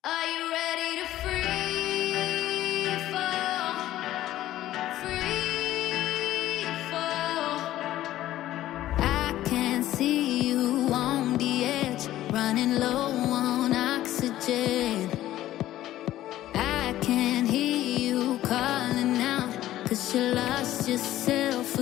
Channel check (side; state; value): right; quieter; 14.0 dB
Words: Are you ready to free fall? Free fall. I can see you on the edge, running low on oxygen. I can hear you calling out, 'cause you lost yourself